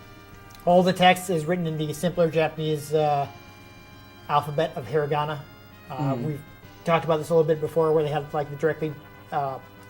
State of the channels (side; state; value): both; identical; correlation 1.00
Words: all the text is written in the simpler Japanese alphabet of hiragana. We've talked about this a little bit before, where they have like the directly